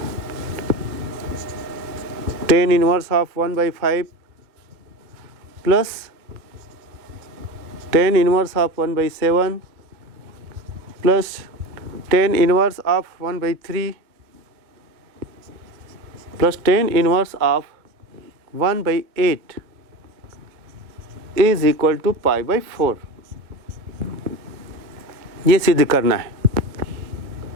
tan inverse of 1/5 plus tan inverse of 1/7 plus tan inverse of 1/3 plus tan inverse of 1/8 is equal to π/4। ये सिद्ध करना है।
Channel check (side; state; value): left; late; 2.1 ms